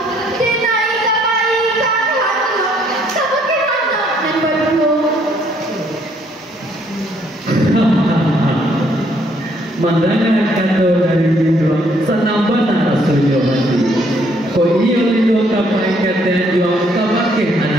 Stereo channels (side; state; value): both; normal; correlation 0.67